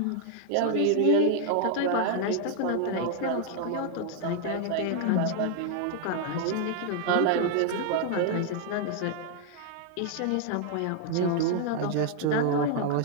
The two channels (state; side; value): different; both; correlation 0.00